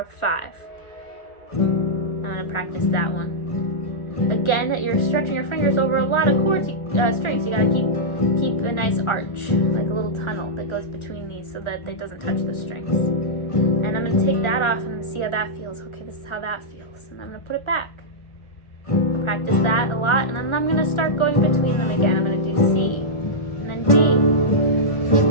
5. I'm going to practice that one. Again, that you're stretching your fingers over a lot of chords, strings. You got to keep a nice arch, like a little tunnel that goes between these so that it doesn't touch the strings. And I'm going to take that off and I'm going to see how that feels. Okay, this is how that feels. And I'm going to put it back. I'll practice that a lot, and then I'm going to start going between them again. I'm going to do C, and then D,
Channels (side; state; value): right; late; 1.3 ms